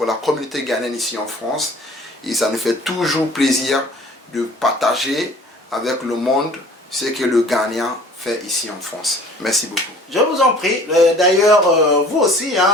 la communauté ghanéenne ici en France. Et ça nous fait toujours plaisir de partager avec le monde ce que le Ghanéen fait ici en France. Merci beaucoup. Je vous en prie. D'ailleurs, vous aussi,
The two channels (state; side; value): normal; both; correlation 0.49